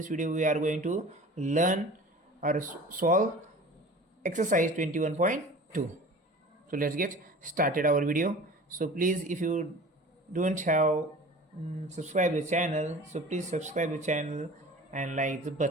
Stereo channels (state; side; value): normal; both; correlation 0.41